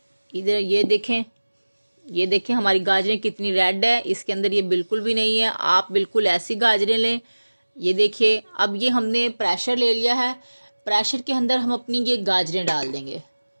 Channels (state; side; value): inverted; both; correlation -1.00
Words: इधर ये देखें हमारी गाजरें कितनी रेड है, इसके अंदर ये बिल्कुल भी नहीं है। आप बिल्कुल ऐसी गाजरें लें। ये देखिए, अब ये हमने प्रेशर ले लिया है। प्रेशर के अंदर हम अपनी ये गाजरें डाल देंगे,